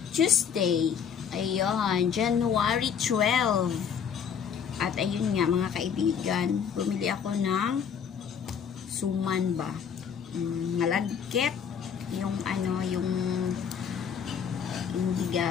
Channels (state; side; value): quieter; right; 7.5 dB